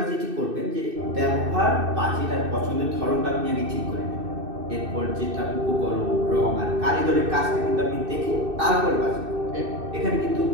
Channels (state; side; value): late; left; 2.6 ms